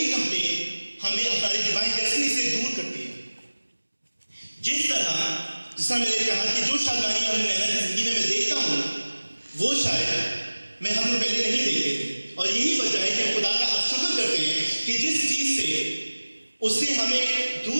کمپلین ہمیں ہماری ڈیوائن ڈیسٹنی سے دور کرتی ہے. جس طرح میں نے کہا کہ جو شادمانی ہم نینا کی زندگی میں دیکھتا ہوں وہ شاید ہم لوگ پہلے نہیں دیکھتے تھے. اور یہی وجہ ہے کہ ہم خدا کا اب شکر کرتے ہیں کہ جس چیز سے اس نے ہمیں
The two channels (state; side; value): inverted; both; correlation -1.00